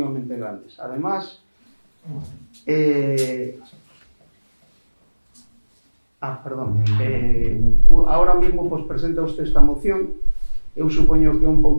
grandes. Además, ahora mismo presenta usted esta moción. Eu supoño que é un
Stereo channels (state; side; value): inverted; both; correlation -1.00